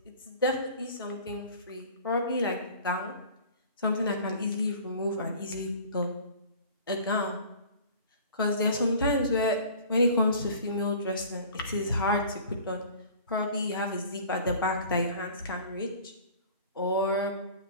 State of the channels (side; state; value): both; inverted; correlation -0.45